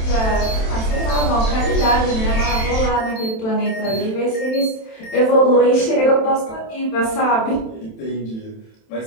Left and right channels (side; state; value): right; late; 27 ms